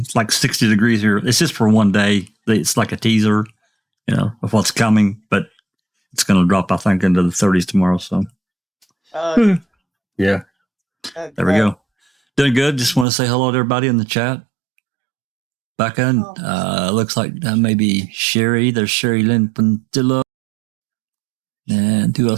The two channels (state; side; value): drops out; left; at 13.1 s